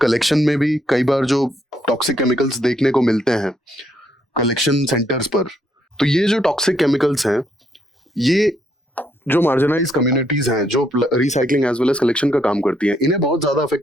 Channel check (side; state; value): both; normal; correlation 0.73